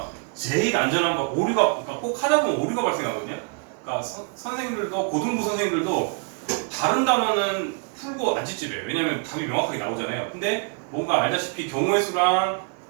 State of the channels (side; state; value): left; quieter; 38.2 dB